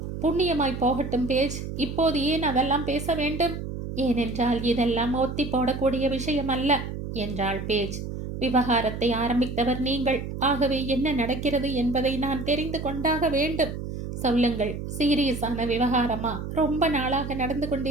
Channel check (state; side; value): noise; right; hum, 7 dB below the sound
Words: புண்ணியமாய் போகட்டும் பேஜ். இப்போது ஏன் அதெல்லாம் பேச வேண்டும்? ஏனென்றால் இதெல்லாம் ஒத்தி போடக்கூடிய விஷயம் அல்ல என்றாள் பேஜ். விவகாரத்தை ஆரம்பித்தவர் நீங்கள். ஆகவே என்ன நடக்கிறது என்பதை நான் தெரிந்து கொண்டாக வேண்டும். சொல்லுங்கள். சீரியஸான விவகாரமா? ரொம்ப நாளாக நடந்து